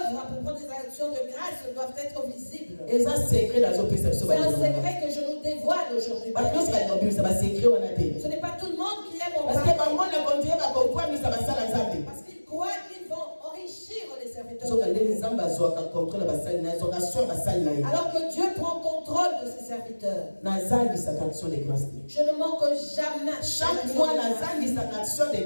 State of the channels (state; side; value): inverted; both; correlation -1.00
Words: pour prendre des actions de grâce doivent être visibles. eza secret nazopesa biso C'est un bandeko na ngai. secret que je nous dévoile aujourd'hui. bato nyonso balinga kobimisa basecret wana te. Ce n'est pas tout le monde qui aime en parce que parler. bango na kontinue bakokwamisa basala nzambe. Parce qu'ils croient qu'ils vont enrichir les serviteurs. soka ndenge nzambe azwaka contrôle ya basali na ye azwaka sur basali na ye. Alors que Dieu prend contrôle de ses serviteurs. nazangisaka action de grâce te. Je ne manque jamais. chaque mois nazangisaka action de